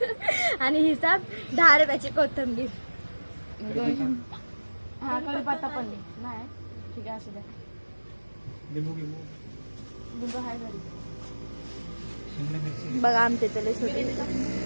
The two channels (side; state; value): both; inverted; correlation -1.00